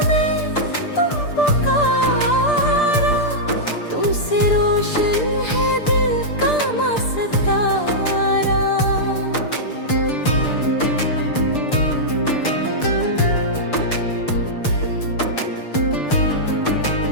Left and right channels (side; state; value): right; late; 6.7 ms